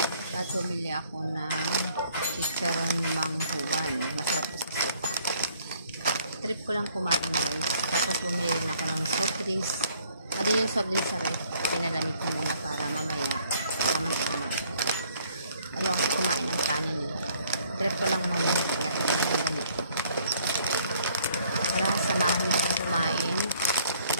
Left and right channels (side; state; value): both; inverted; correlation -0.62